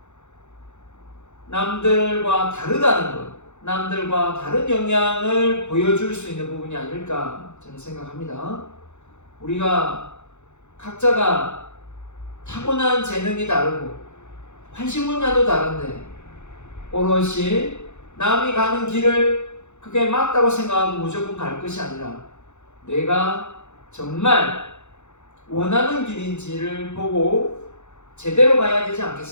남들과 다르다는 것, 남들과 다른 역량을 보여줄 수 있는 부분이 아닐까 저는 생각합니다. 우리가 각자가 타고난 재능이 다르고 관심 분야도 다른데 오롯이 남이 가는 길을 그게 맞다고 생각하고 무조건 갈 것이 아니라 내가 정말 원하는 길인지를 보고 제대로 가야 되지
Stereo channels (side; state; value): right; late; 0.83 ms